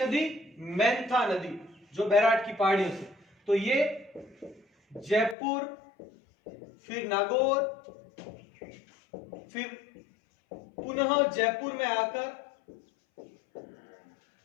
मेंथा नदी, जो बैराट की पहाड़ियों से। तो ये जयपुर, फिर नागौर, फिर पुनः जयपुर में आकर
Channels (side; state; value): right; drops out; at 5.4 s